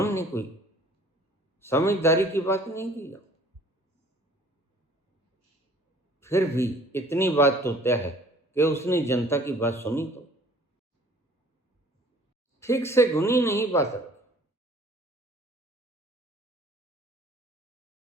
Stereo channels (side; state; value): both; normal; correlation 0.53